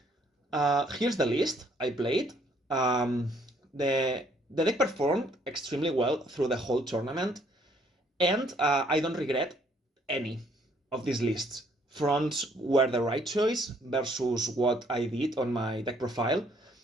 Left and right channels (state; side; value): normal; both; correlation 0.65